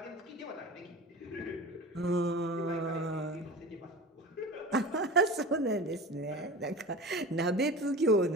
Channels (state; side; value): normal; both; correlation 0.33